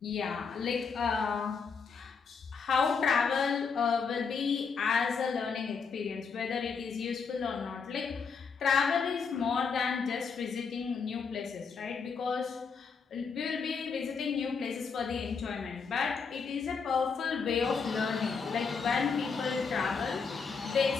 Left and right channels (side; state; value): right; quieter; 5.5 dB